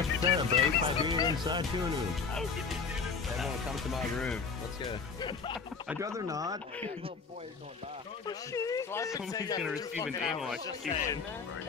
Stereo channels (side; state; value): right; quieter; 5.2 dB